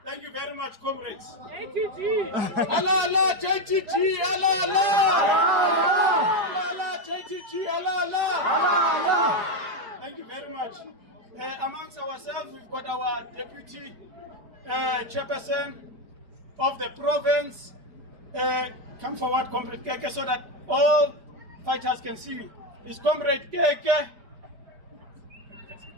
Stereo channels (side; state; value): left; late; 4.9 ms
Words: Thank you very much, comrades. JTG. Halala, JTG, halala. Halala, JTG, halala. Halala. Thank you very much. Amongst ourselves, we've got our deputy chairperson of the province. Come forward, Comrade Keke, so that all fighters can see you. It's Comrade Keke.